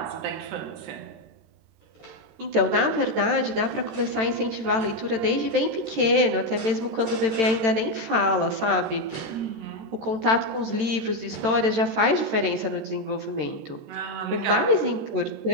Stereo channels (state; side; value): late; left; 13 ms